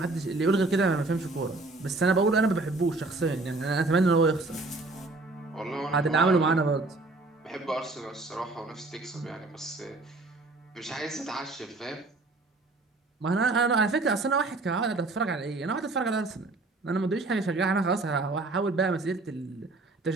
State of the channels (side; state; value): left; quieter; 3.3 dB